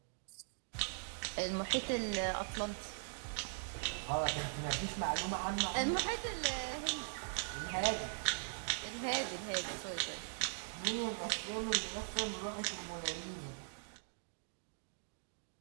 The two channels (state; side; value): silent; left; digital silence